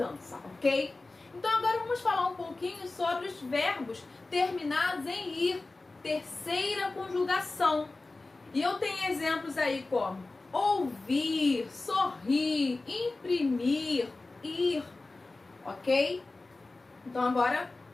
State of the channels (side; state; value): right; quieter; 3.3 dB